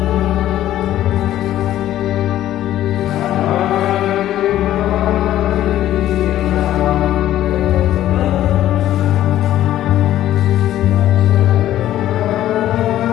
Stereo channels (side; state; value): right; quieter; 13.0 dB